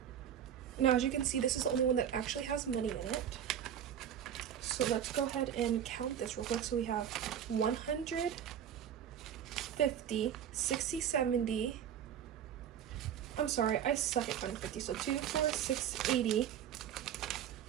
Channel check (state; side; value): quieter; left; 9.4 dB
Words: Now, as you can see, this is the only one that actually has money in it. So let's go ahead and count this real quick. So we have 100, 50, 60, 70. I'm sorry, I suck at counting 50. So 2, 4, 6, 80.